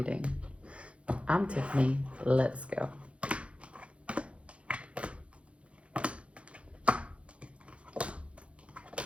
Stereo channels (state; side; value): late; left; 0.061 ms